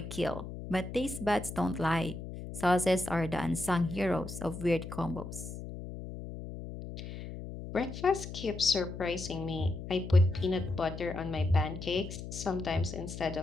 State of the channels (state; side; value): noise; left; hum, 9 dB below the sound